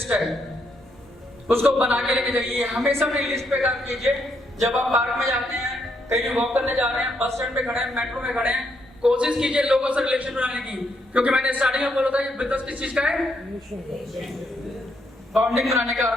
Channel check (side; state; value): both; normal; correlation 0.76